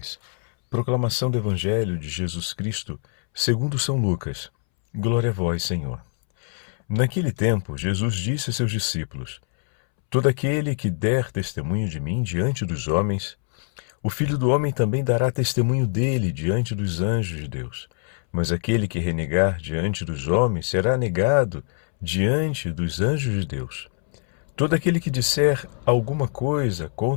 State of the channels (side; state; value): right; silent; 63 dB below the other